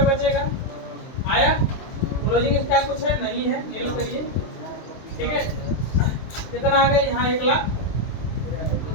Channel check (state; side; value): late; right; 23 ms